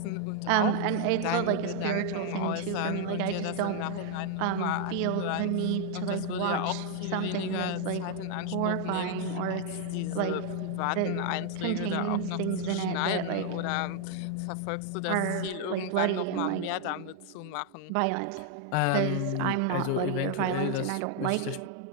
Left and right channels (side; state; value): both; different; correlation 0.00